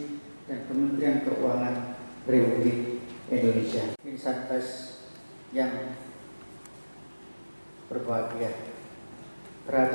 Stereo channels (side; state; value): both; inverted; correlation -1.00